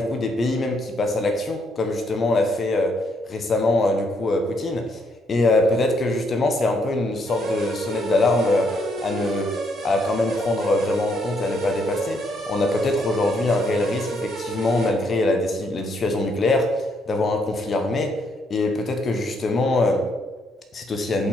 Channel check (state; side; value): normal; both; correlation 0.73